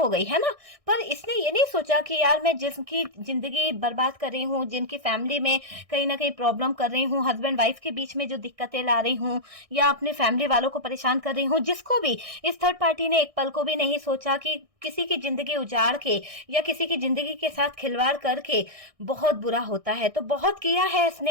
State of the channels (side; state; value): left; late; 1.6 ms